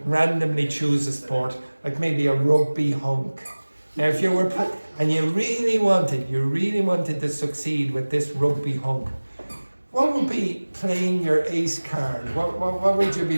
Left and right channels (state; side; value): inverted; both; correlation -1.00